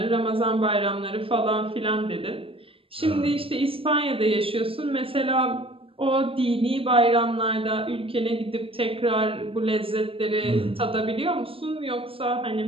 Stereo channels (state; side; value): late; left; 0.26 ms